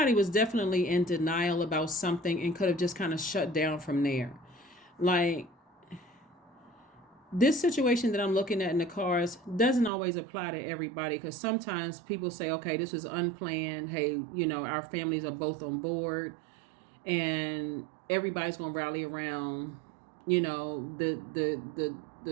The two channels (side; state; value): left; drops out; at 9.9 s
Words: was definitely in denial about something and could have just kind of shut down from there. Like, this situation that I'm looking at in the cards doesn't always apply to everybody, because sometimes people say, okay, this was unplanned. Hey, our families are both on board and everybody's going to rally around, the